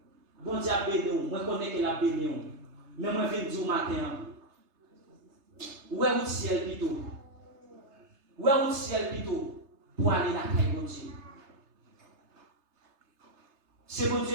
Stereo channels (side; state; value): left; late; 3.3 ms